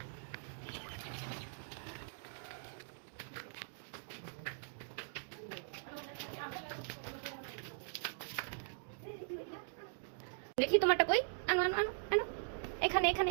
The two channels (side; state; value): left; silent; digital silence